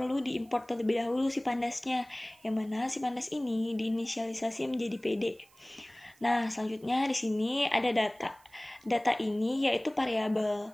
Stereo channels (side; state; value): right; noise; hiss, 29 dB below the sound